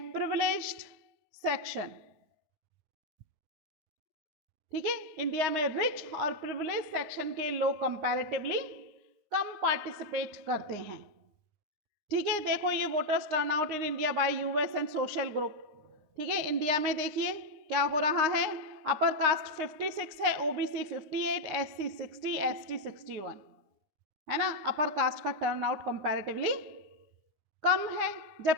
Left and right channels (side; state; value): left; late; 9.7 ms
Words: privileged section। ठीक है, इंडिया में रिच और प्रिविलेज सेक्शन के लोग कंपैरेटिवली कम पार्टिसिपेट करते हैं। ठीक है, देखो ये voters turnout in India by US and social group. ठीक है, इंडिया में देखिए क्या हो रहा है, अपर कास्ट 56 है, ओबीसी 58, एससी 60, एसटी 61, है ना। अपर कास्ट का टर्नआउट कंपैरेटिवली कम है,